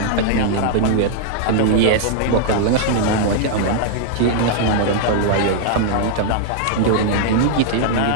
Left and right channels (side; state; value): both; different; correlation -0.01